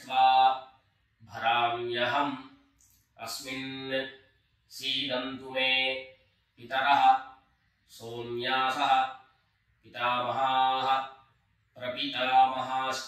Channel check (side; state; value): both; identical; correlation 1.00